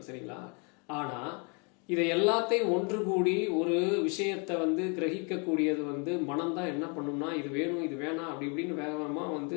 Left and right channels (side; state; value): right; quieter; 35.0 dB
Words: சரிங்களா? ஆனால் இதை எல்லாத்தையும் ஒன்று கூடி ஒரு விஷயத்தை வந்து கிரகிக்கக்கூடியது வந்து மனம்தான். என்ன பண்ணும்னா, இது வேணும், இது வேணாம், அப்படி இப்படின்னு வேகமாக